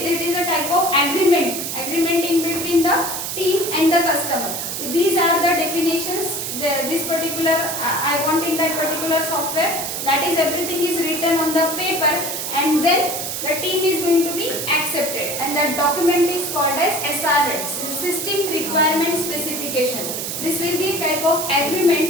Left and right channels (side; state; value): right; noise; hiss, 4 dB below the sound